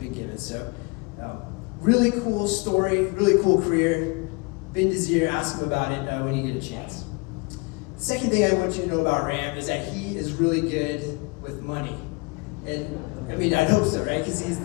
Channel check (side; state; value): right; quieter; 28.4 dB